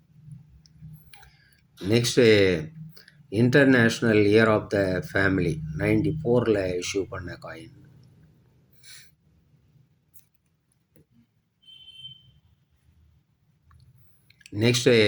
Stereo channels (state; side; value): identical; both; correlation 1.00